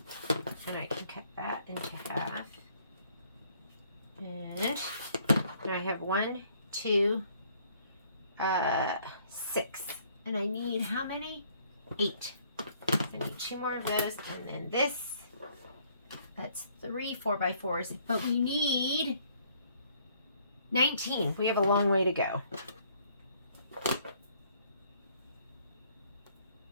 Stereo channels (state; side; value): inverted; both; correlation -0.64